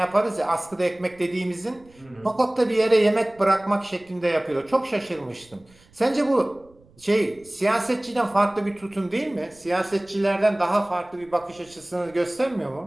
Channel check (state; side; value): noise; right; rumble, 28 dB below the sound